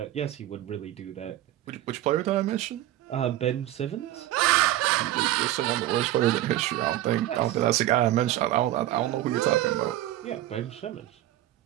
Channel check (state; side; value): quieter; left; 14.0 dB